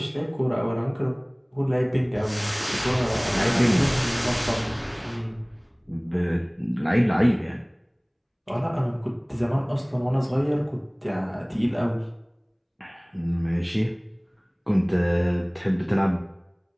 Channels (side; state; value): both; identical; correlation 1.00